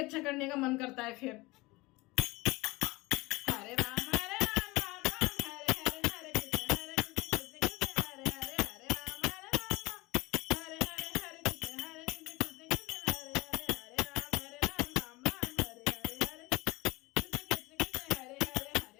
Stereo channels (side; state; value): right; quieter; 22.2 dB